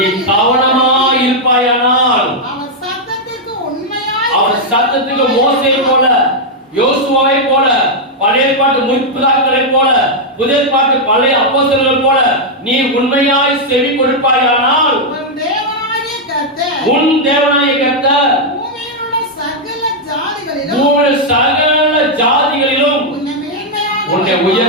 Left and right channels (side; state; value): both; normal; correlation -0.02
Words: கவனமாய் இருப்பாயானால் அவர் சத்தத்துக்கு மோசே போல, யோசுவாவை போல, பழைய பாட்டு முற்பிதாக்களை போல, புதிய பாட்டு பழைய அப்போஸ்தலர்கள் போல நீ உண்மையாய் செவி கொடுப்பாயானால் உன் தேவனாகிய கர்த்தர் சகல ஜாதிகளிலும் உன்னை